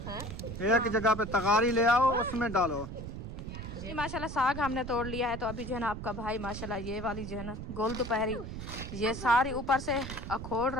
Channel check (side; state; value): right; noise; rumble, 8 dB below the sound